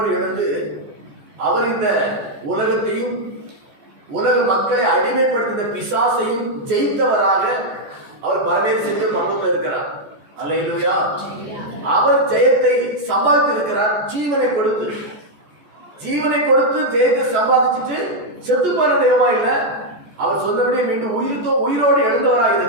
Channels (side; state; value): left; late; 14 ms